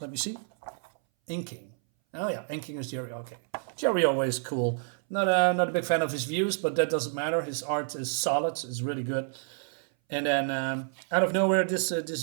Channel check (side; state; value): left; silent; 58 dB below the other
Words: me see, inking. Oh yeah, inking is Jerry. Okay, Jerry Ordway is cool. Not a big fan of his views, but that doesn't matter. His art is solid. It's really good. And then out of nowhere, this